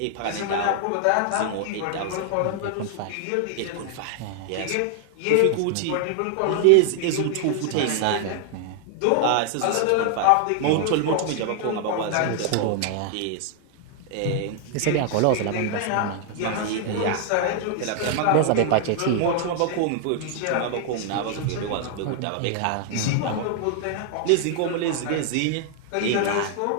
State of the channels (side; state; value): both; different; correlation 0.00